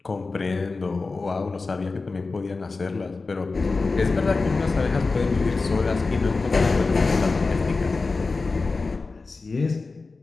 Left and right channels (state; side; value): quieter; right; 3.9 dB